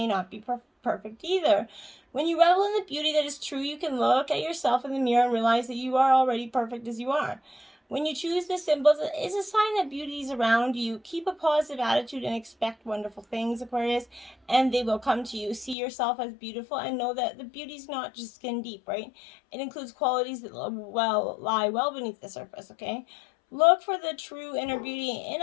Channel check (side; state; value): right; drops out; at 15.8 s